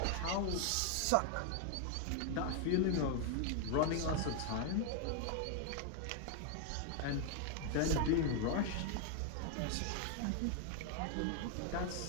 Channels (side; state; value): both; different; correlation 0.00